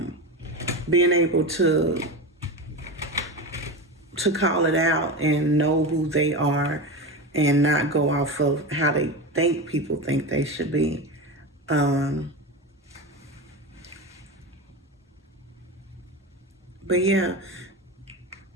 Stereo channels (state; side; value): normal; both; correlation 0.22